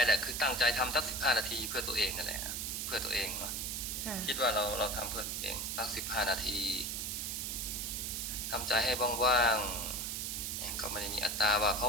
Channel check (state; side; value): noise; right; hiss, 2 dB below the sound